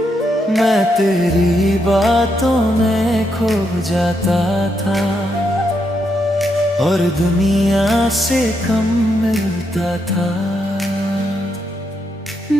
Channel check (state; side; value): normal; both; correlation 0.80